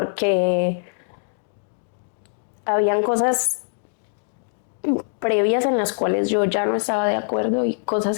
habían cosas previas en las cuales yo ya no estaba de acuerdo y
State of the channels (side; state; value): right; silent; digital silence